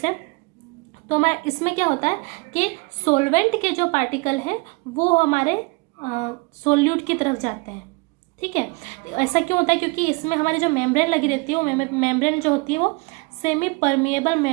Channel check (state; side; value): quieter; left; 27.8 dB